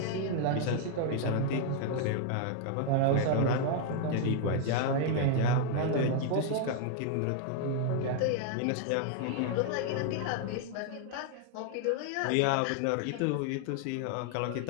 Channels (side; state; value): both; different; correlation 0.00